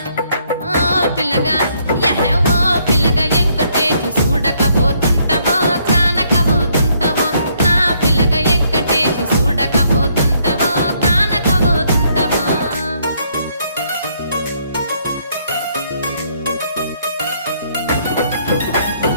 ఓ పిల్లగా యహే ఓ పిల్లగా ఎంకటేశు చూడకపోతుంటవో కానకపోతుంటవో నా పిల్లగా ఎంకటేశు చూడకపోతుంటవో కానకపోతుంటవో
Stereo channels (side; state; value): both; inverted; correlation -0.70